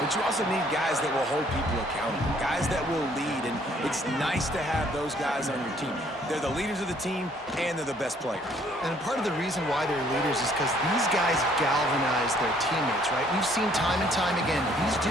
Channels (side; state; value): both; normal; correlation 0.62